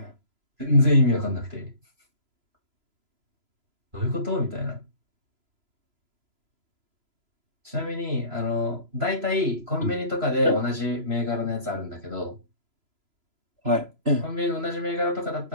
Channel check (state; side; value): late; left; 3.0 ms